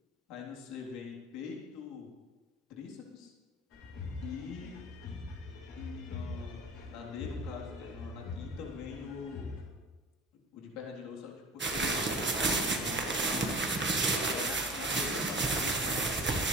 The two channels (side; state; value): both; normal; correlation 0.38